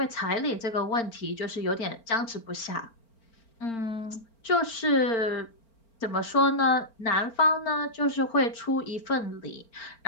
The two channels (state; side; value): late; right; 4.4 ms